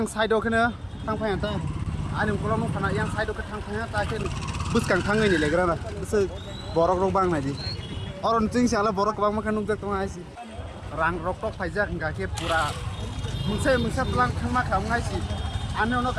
side đó cái nữa thang phê ta anh đừng có lo nó phản yang side đó cái thang phê ta cái bus càng thang này lại cái nào bus borok rong bang này đi orang cing siapa borok bang makan nunggu tuh nggak sih rang rokok aja nggak kayak pura mungsa pelang khangma khamngai si ane ono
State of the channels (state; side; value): identical; both; correlation 1.00